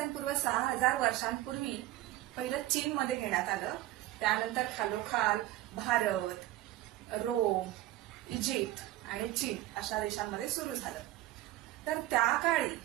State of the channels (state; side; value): quieter; left; 15.7 dB